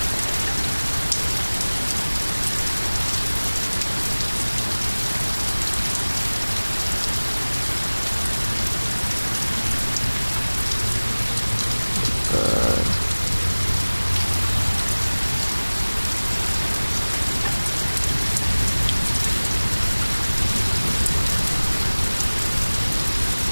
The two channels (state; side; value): inverted; both; correlation -1.00